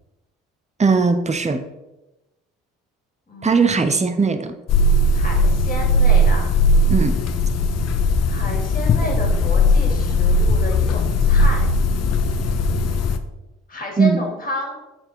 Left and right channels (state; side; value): normal; both; correlation 0.39